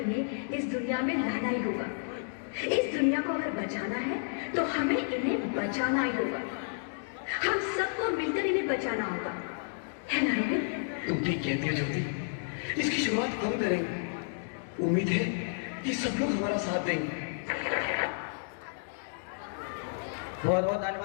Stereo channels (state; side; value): silent; right; digital silence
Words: इस दुनिया में लाना ही होगा। इस दुनिया को अगर बचाना है तो हमें इन्हें बचाना ही होगा। हम सबको मिलकर इन्हें बचाना होगा, है ना रोहित? तुम ठीक कहती हो ज्योति, इसकी शुरुआत हम करेंगे। उम्मीद है कि सब लोग हमारा साथ देंगे। बहुत बहुत